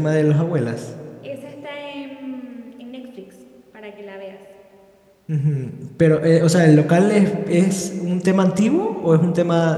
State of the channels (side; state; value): both; identical; correlation 1.00